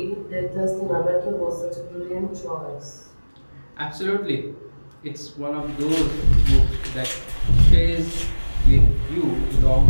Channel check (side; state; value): both; inverted; correlation -1.00